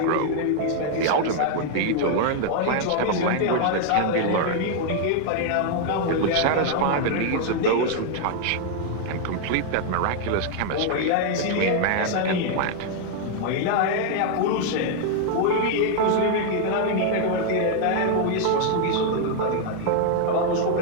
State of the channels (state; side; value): different; both; correlation 0.00